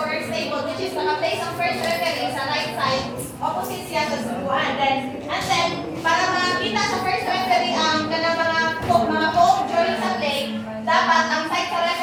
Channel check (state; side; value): identical; both; correlation 1.00